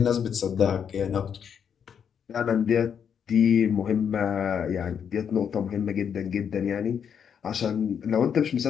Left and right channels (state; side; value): quieter; right; 7.7 dB